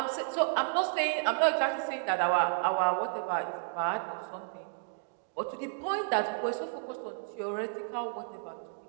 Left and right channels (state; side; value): silent; left; digital silence